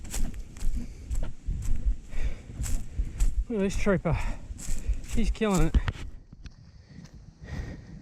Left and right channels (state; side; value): identical; both; correlation 1.00